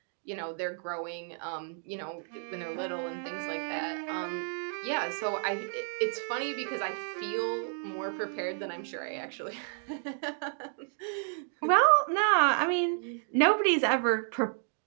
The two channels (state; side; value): silent; left; 56 dB below the other